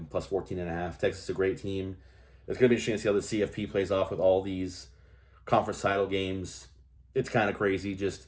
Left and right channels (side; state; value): both; identical; correlation 1.00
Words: plus 14.5. Texas is a great team. It's going to be interesting to see how the CFP plays off with all these conference title games. It's kind of crazy